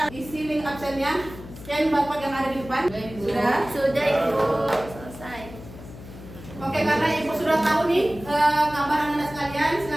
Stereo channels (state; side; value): noise; left; hum, 15 dB below the sound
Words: isi link absennya, scan barcode yang ada di depan. Sudah? Sudah Ibu. Selesai. Oke, karena Ibu sudah tahu nih kabar anak-anak sekalian,